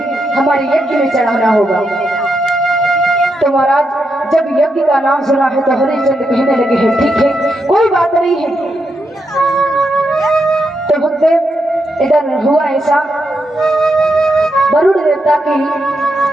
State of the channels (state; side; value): normal; both; correlation 0.83